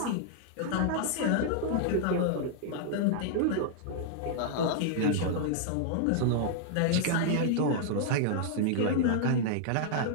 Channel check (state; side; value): different; both; correlation -0.01